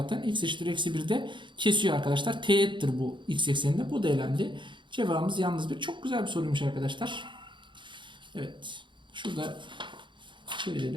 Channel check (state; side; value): late; left; 0.23 ms